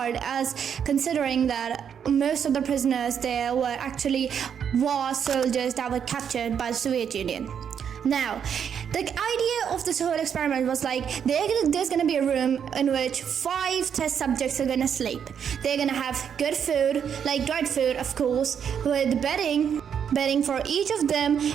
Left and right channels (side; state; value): left; quieter; 7.9 dB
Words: as considering that most of the prisoners there were actually war soldiers that were captured by the Soviet Union. Now, the idea of this whole experiment was like, there's going to be a room in which 5 test subjects are going to sleep. They're going to have good food, like dried food, of course, with bedding for each of them,